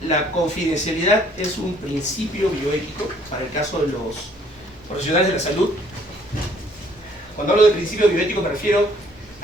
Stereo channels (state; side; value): normal; both; correlation 0.61